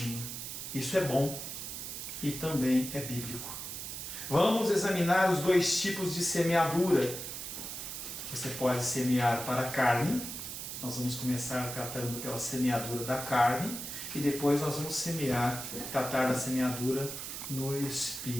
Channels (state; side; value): noise; right; hiss, 7 dB below the sound